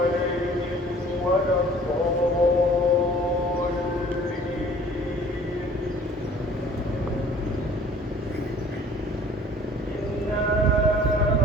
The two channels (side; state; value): both; normal; correlation 0.51